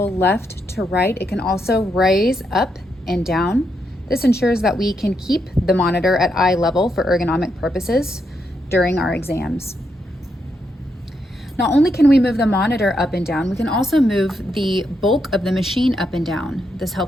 left to right, it can also raise up and down. This ensures that we can keep the monitor at eye level for ergonomic purposes during our exams. Not only can we move the monitor up and down, we can also move the bulk of the machine up and down. This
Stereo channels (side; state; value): both; normal; correlation 0.80